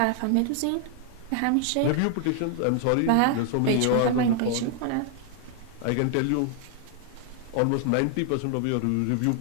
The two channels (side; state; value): both; different; correlation 0.00